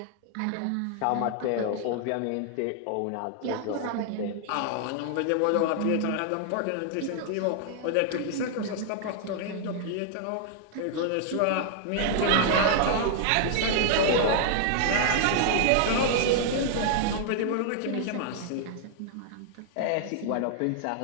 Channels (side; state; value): both; different; correlation 0.00